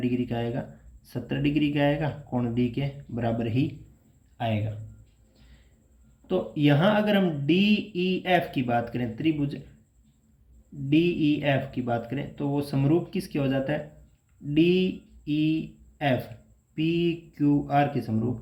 का आएगा, 70 डिग्री का आएगा, कोण डी के बराबर ही आएगा। तो यहाँ अगर हम डी ई एफ की बात करें, त्रिभुज डी ई एफ की बात करें, तो वो समरूप किसके हो जाता है, D E F P Q are के समरूप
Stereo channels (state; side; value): identical; both; correlation 1.00